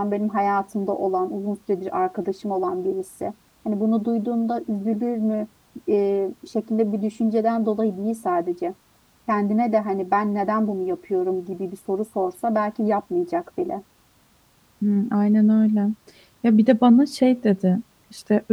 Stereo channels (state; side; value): identical; both; correlation 1.00